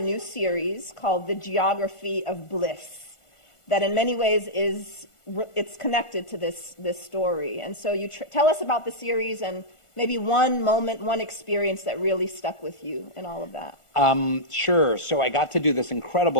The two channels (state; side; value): late; right; 1.4 ms